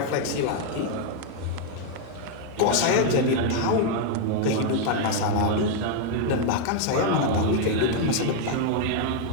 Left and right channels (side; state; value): both; different; correlation 0.00